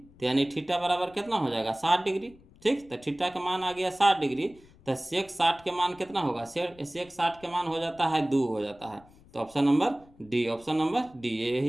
यानी थीटा बराबर कितना हो जाएगा 60 डिग्री। ठीक। तो थीटा का मान आ गया 60 डिग्री, तो सेक 60 के मान कितना होगा, सेक 60 के मान हो जाता है 2 हो जाता है। तो option number D, option number D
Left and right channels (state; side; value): noise; left; rumble, 26 dB below the sound